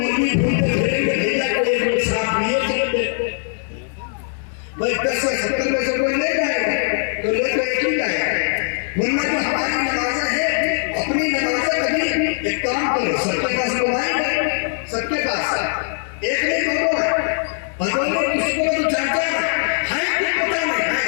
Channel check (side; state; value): right; silent; digital silence